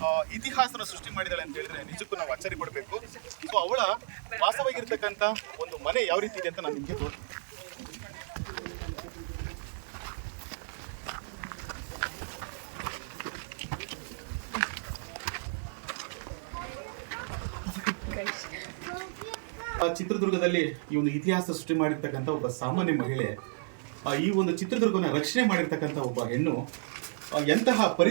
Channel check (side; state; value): left; silent; digital silence